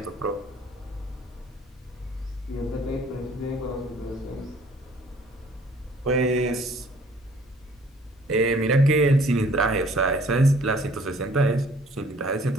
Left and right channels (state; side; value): normal; both; correlation 0.56